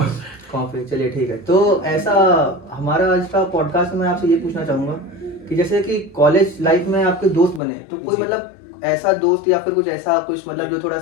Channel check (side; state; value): right; drops out; at 7.6 s